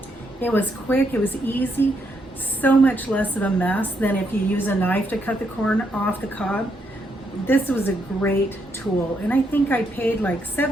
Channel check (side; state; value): both; normal; correlation 0.77